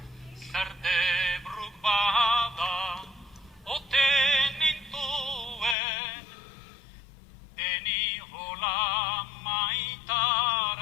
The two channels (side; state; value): right; drops out; at 5.8 s